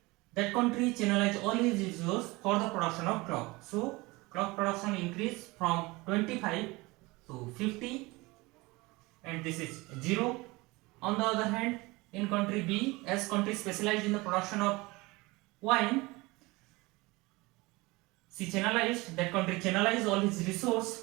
that country channelized all his resource for the production of cloth. So cloth production increased from 25 to 50, and this is 0. On the other hand, in country B, as country specialized in the production of wine, that country channelized all its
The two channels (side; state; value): left; quieter; 23.0 dB